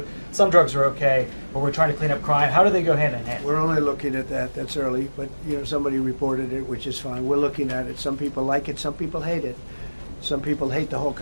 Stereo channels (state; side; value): inverted; both; correlation -1.00